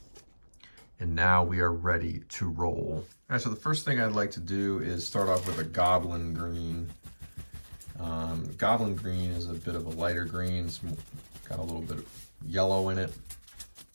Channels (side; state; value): both; inverted; correlation -1.00